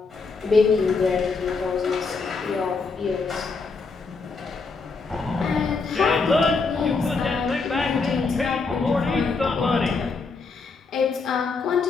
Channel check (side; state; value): right; quieter; 4.4 dB